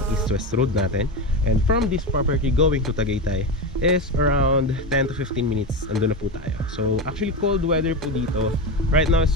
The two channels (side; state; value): both; normal; correlation 0.18